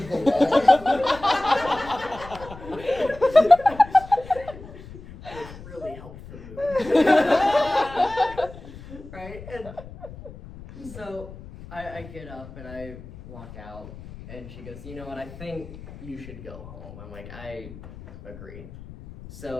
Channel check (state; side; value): noise; left; rumble, 16 dB below the sound